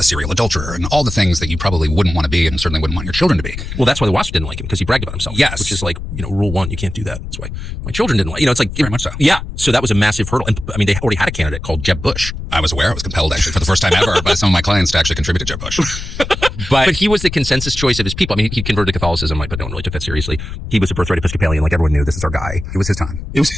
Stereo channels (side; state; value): left; noise; rumble, 8 dB below the sound